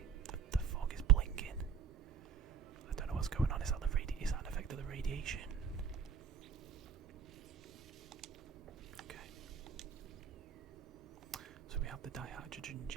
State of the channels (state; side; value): quieter; left; 7.3 dB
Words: the fog is blinking. I don't know what's going on. Is that an effect of the radiation? Okay. So we have the dihydrogen